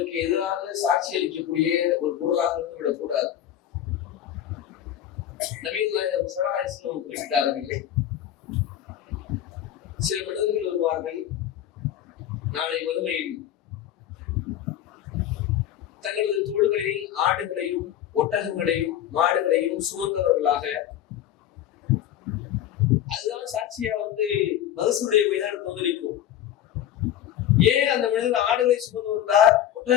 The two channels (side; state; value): right; quieter; 11.2 dB